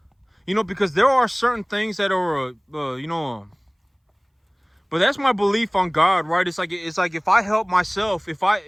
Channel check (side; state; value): both; identical; correlation 1.00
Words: because there are certain things that are but that's my belief on God, right? It's like if I help myself,